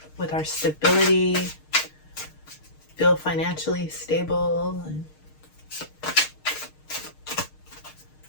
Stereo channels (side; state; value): right; late; 6.5 ms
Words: with our stability, feel financially stable, and